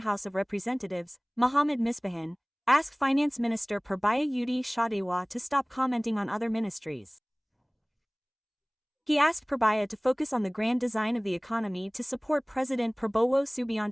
of Representatives, Muhammad Misbakhun, asked Finance Minister Purbaya Setop to stop commenting on other ministries. He asked Purbaya to focus on the grand design of the economy to support President Prabowo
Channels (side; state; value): both; identical; correlation 1.00